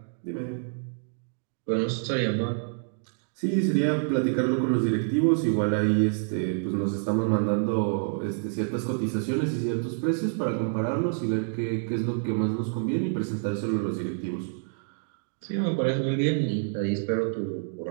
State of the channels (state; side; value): silent; left; digital silence